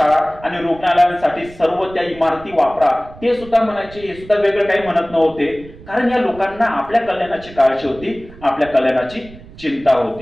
आणि रुग्णालयांसाठी सर्व त्या इमारती वापरा, ते सुद्धा म्हणायचे। हे सुद्धा वेगळं काही म्हणत नव्हते, कारण या लोकांना आपल्या कल्याणाची काळजी होती, आपल्या कल्याणाची चिंता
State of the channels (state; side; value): noise; right; rumble, 19 dB below the sound